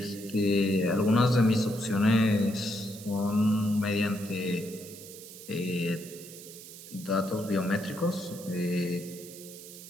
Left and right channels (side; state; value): right; noise; hiss, 15 dB below the sound